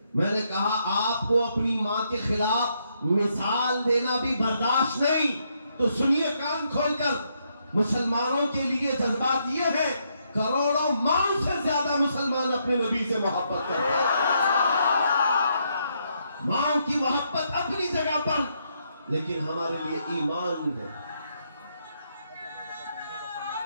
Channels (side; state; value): both; inverted; correlation -0.76